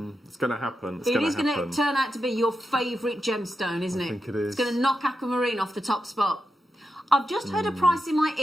It's going to happen. It is going to turn out to be your favourite gemstone, isn't it? I think it is. It's going to knock aquamarine off the top spot. I've just heard a price in my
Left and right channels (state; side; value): normal; both; correlation 0.88